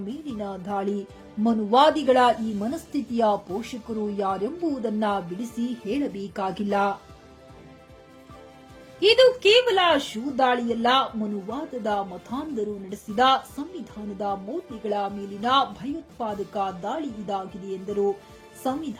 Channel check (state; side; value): identical; both; correlation 1.00